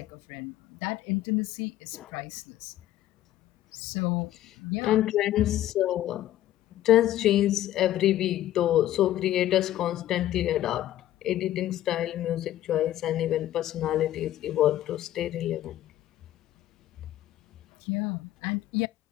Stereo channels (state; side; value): quieter; right; 13.4 dB